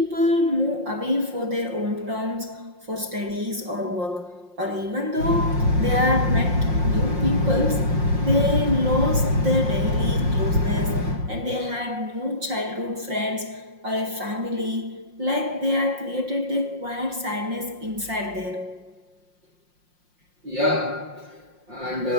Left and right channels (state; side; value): late; left; 5.6 ms